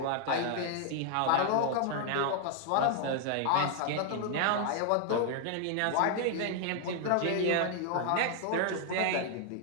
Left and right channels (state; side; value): different; both; correlation 0.00